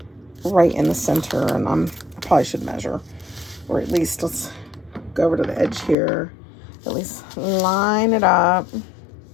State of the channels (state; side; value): drops out; right; at 6.0 s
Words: right in the center, and I probably should measure, or at least let's go over to the edge here, at least line it up,